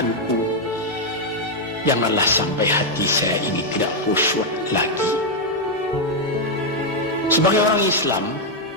janganlah sampai hati saya ini tidak khusyuk lagi. Sebagai orang Islam,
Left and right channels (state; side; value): normal; both; correlation -0.01